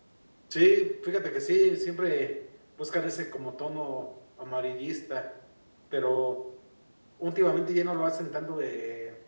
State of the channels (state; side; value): inverted; both; correlation -1.00